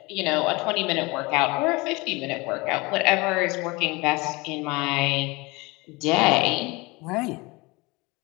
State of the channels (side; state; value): right; quieter; 24.6 dB